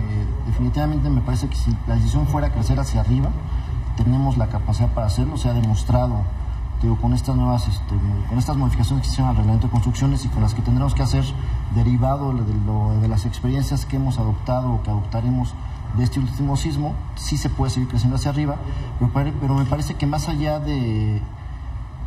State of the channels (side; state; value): both; identical; correlation 1.00